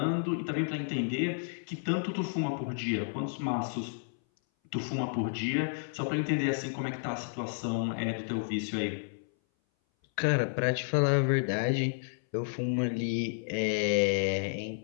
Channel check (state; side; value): silent; right; 57 dB below the other